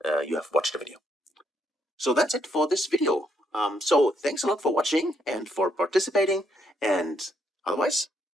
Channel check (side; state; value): both; normal; correlation 0.73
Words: you have watched the video. So that's it for this video. So thanks a lot for watching and for participating. And otherwise,